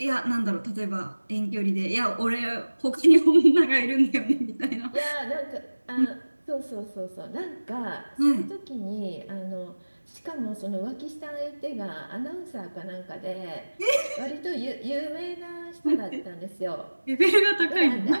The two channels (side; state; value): both; inverted; correlation -1.00